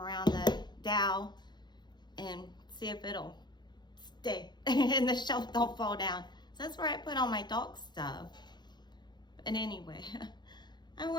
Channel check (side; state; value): right; late; 0.21 ms